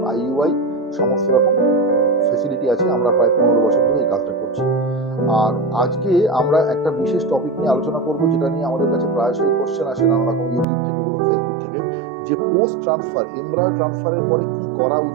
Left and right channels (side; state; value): left; drops out; at 10.7 s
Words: আইইউআই সমস্ত রকম ফেসিলিটি আছে। আমরা প্রায় 15 বছর ধরে এই কাজটা করছি। আর আজকে আমরা একটা বিশেষ টপিক নিয়ে আলোচনা করব, যেটা নিয়ে আমাদের কাছে প্রায়শই কোশ্চেন আসে নানা রকম, ইউটিউব থেকে বলুন, ফেসবুক থেকে, যে পোস্ট ট্রান্সফার, এমব্রায়ো ট্রান্সফারের পরে কি করা